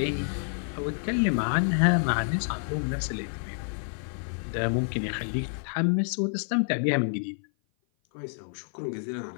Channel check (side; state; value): right; silent; 55 dB below the other